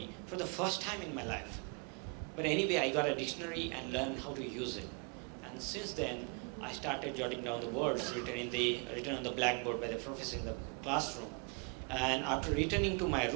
for the first time in my life. But anyway, I got a dictionary and learned how to use it. And since then, I started jotting down the words written on the blackboard by the professor in the classroom. And after returning to my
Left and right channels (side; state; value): left; quieter; 35.4 dB